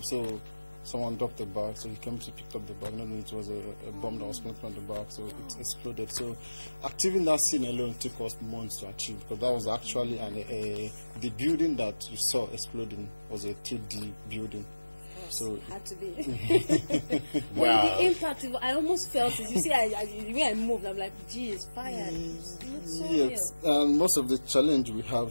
so someone dropped the bag, so he came to pick up the bag. Not it was a bomb that was planted on the bag, so it exploded. So achieving that scene alone took us months to achieve, because that was actually the building that you saw exploding was a 3D building. So had to be. Well, the impact, I almost felt it. You see, the way I moved, I'm like, gee, it's fire. It's so yes, and most of the challenge we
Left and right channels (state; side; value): inverted; both; correlation -1.00